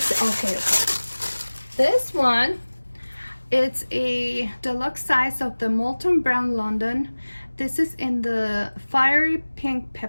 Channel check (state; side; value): inverted; both; correlation -1.00